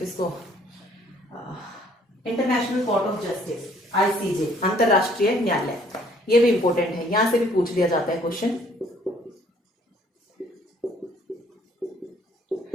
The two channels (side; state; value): both; normal; correlation 0.60